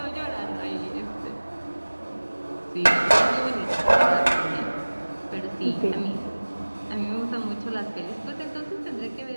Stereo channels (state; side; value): inverted; both; correlation -1.00